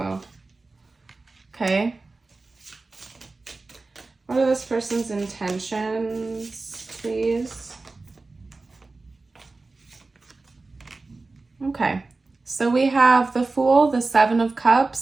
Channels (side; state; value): left; quieter; 3.6 dB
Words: Okay. What are this person's intentions, please? Okay. So we have the Fool, the Seven of